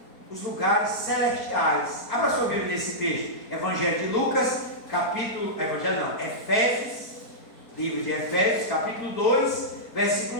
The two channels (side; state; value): right; late; 4.3 ms